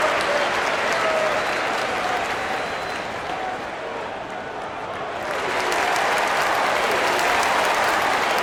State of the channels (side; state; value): both; identical; correlation 1.00